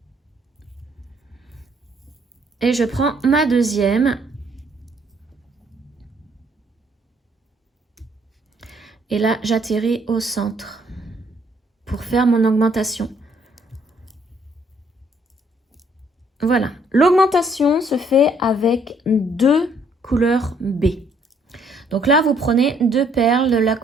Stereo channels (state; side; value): normal; both; correlation 0.66